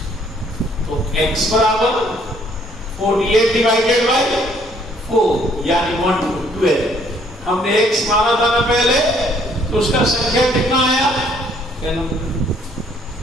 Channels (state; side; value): normal; both; correlation 0.64